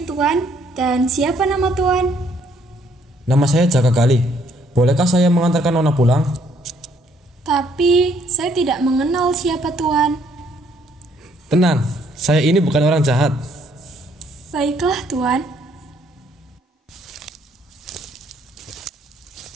Tuan. Dan siapa nama Tuan? Nama saya Jaka Gali. Bolehkah saya mengantarkan Nona pulang? Tapi saya tidak mengenal siapa Tuan. Tenang, saya ini bukan orang jahat. Baiklah Tuan.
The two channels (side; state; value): both; normal; correlation 0.67